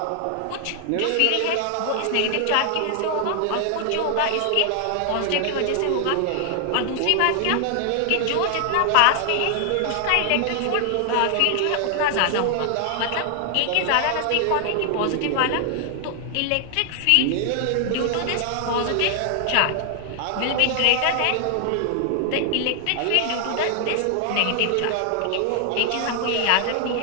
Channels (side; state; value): both; different; correlation 0.00